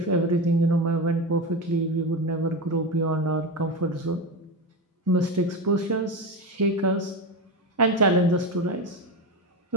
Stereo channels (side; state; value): both; normal; correlation 0.19